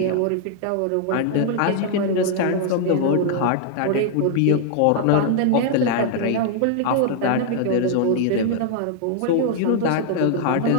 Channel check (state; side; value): different; both; correlation 0.00